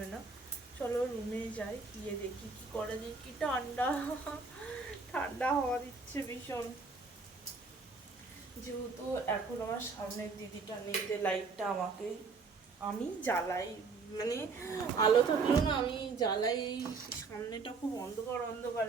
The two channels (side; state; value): left; quieter; 4.4 dB